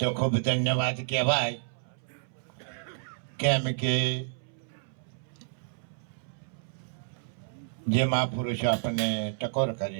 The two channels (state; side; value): silent; left; 58 dB below the other